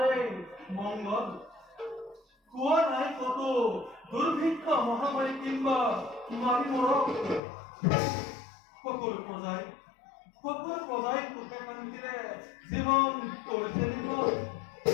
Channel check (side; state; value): right; drops out; at 7.4 s